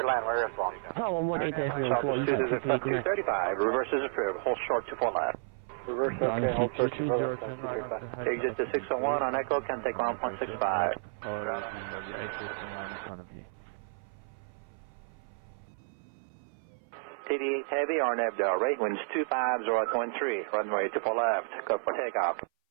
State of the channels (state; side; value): silent; left; 57 dB below the other